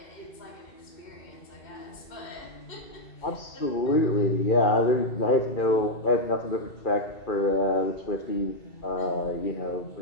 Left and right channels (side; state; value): right; late; 2.4 ms